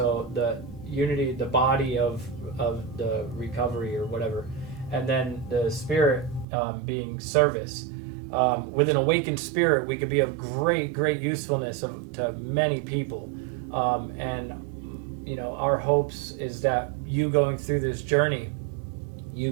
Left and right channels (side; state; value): left; drops out; at 6.5 s